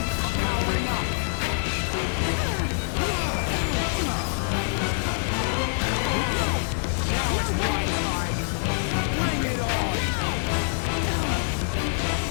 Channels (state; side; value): silent; right; digital silence